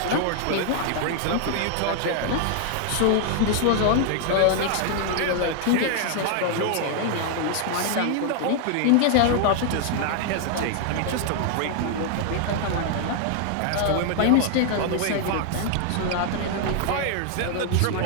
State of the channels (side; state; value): both; different; correlation 0.00